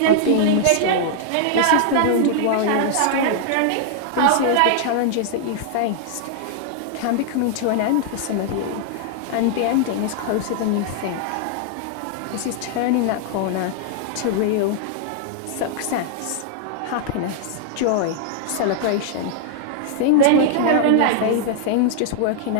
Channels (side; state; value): both; different; correlation -0.01